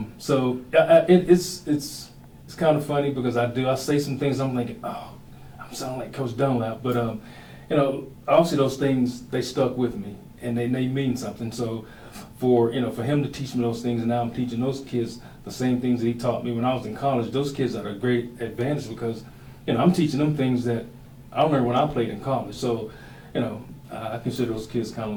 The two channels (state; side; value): identical; both; correlation 1.00